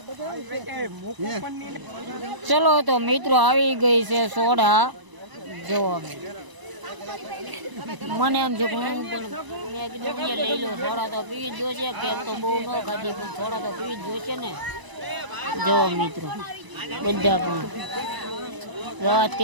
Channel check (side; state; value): left; late; 1.0 ms